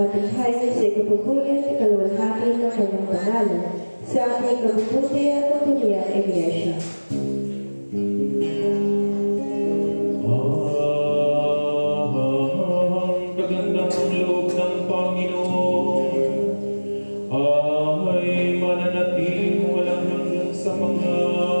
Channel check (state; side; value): inverted; both; correlation -1.00